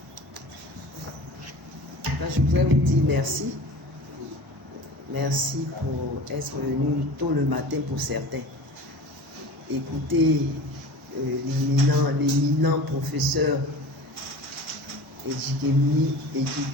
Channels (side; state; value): both; normal; correlation 0.37